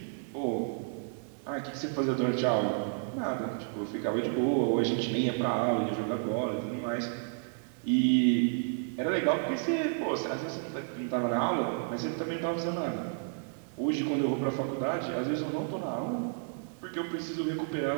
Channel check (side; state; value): left; silent; digital silence